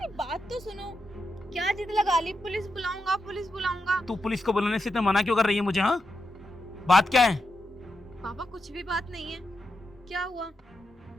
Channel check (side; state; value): both; normal; correlation 0.86